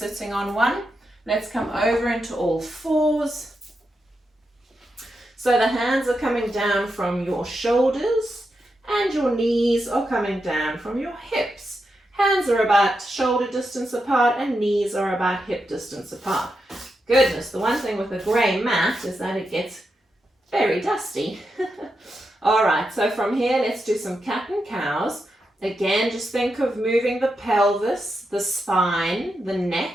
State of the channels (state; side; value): normal; both; correlation 0.86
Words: on one. Let's come over into all fours. So the hands are coming down from your shoulders and your knees are coming down from your hips. Hands are about shoulder distance apart and knees are about hip distance apart. Goodness, the one thing with a grey mat is that it gets very dusty. All right, so from here, let's do some cat and cows. Again, just think of moving the pelvis, the spine, the